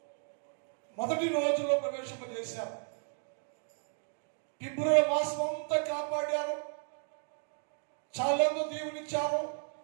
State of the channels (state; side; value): silent; left; 55 dB below the other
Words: మొదటి రోజులో ప్రవేశింపజేశారు. ఫిబ్రవరి మాసం అంతా కాపాడారు, చాలా దీవునిచ్చారు,